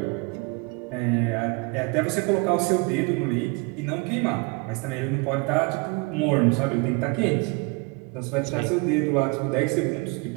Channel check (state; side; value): quieter; left; 28.8 dB